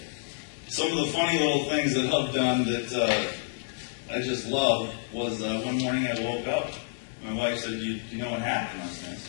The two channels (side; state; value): right; silent; digital silence